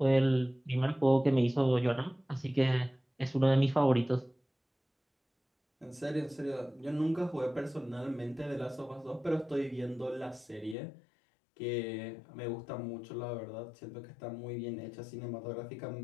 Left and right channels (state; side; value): drops out; right; at 10.8 s